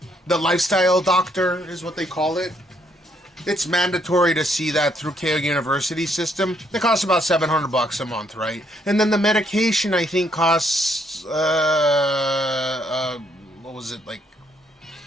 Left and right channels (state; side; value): normal; both; correlation 0.71